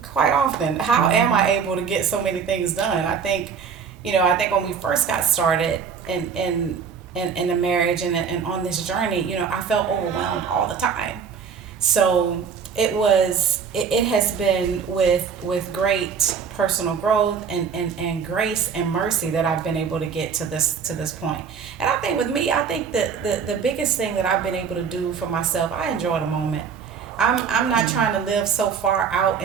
quite often. How am I able to get so many things done? I think when we first got started in the marriage and on this journey, you know, I felt overwhelmed all the time. So it has been with great personal growth and grace and mercy that I've been able to get to this point. And I think with me, I think that the biggest thing that I've been able to do for myself, I enjoy the moment. I'm not trying to live so far out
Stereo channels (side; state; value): left; quieter; 6.5 dB